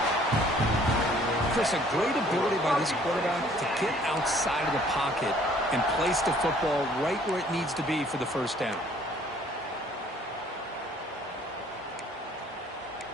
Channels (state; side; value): normal; both; correlation 0.58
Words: Chris, a great ability by this quarterback to get outside of the pocket and place the football right where it needs to be for the first down.